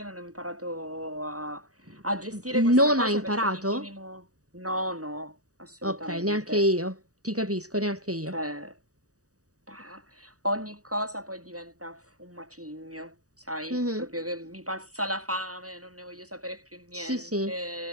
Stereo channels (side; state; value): left; late; 0.66 ms